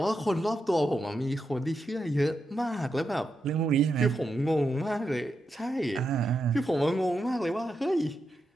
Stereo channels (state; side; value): normal; both; correlation 0.86